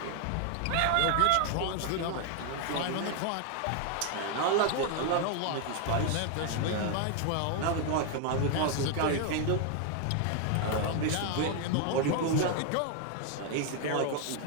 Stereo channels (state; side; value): different; both; correlation 0.01